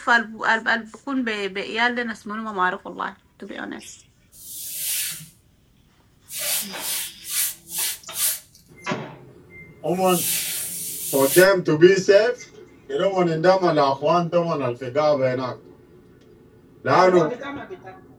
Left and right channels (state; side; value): identical; both; correlation 1.00